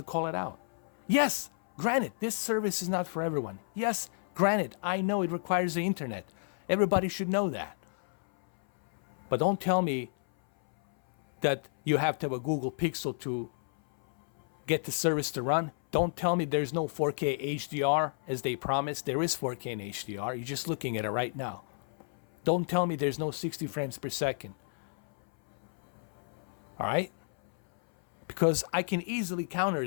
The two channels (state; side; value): silent; right; 57 dB below the other